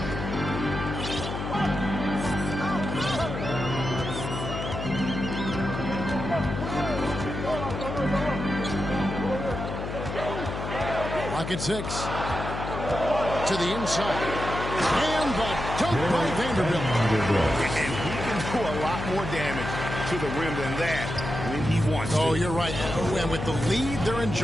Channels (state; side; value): noise; left; hum, 6 dB below the sound